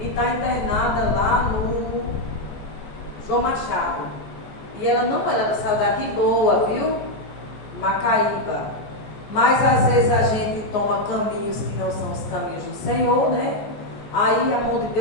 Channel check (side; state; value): right; late; 14 ms